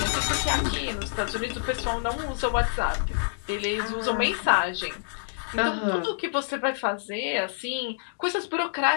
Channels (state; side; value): silent; right; digital silence